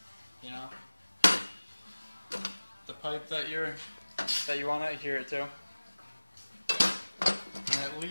you know. The pipe that you want to adhere it to, and at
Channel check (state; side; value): inverted; both; correlation -1.00